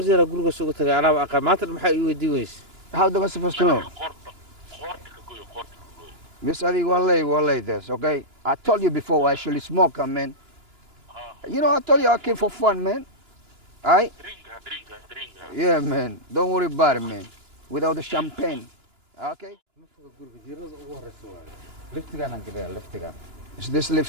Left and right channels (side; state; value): left; late; 2.9 ms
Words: jeer guriga soo tagay anaaba aqaan maanta maxay ii weydiin weyse. How am I supposed to know? Yes, I wallahi this, okay? I told you before I actually smoke, man. You know, I told you I came for fun, man. Alright? Yeah, man. Don't worry about it, man. Without the champagne. Okay? Liftigaan aan galay liftigaan. Is this